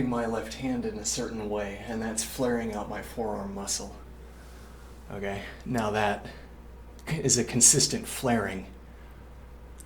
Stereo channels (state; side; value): identical; both; correlation 1.00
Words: my left hand in a certain way, and that's flaring out my forearm muscle. Okay, now that is a consistent flaring.